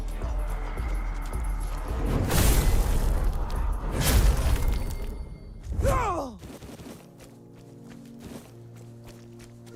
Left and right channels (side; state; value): both; identical; correlation 1.00